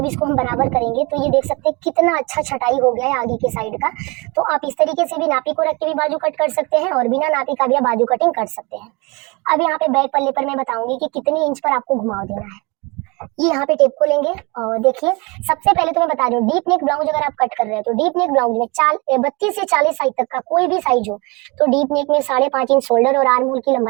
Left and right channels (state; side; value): quieter; left; 27.3 dB